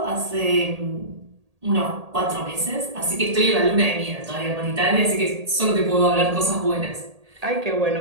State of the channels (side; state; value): left; late; 1.8 ms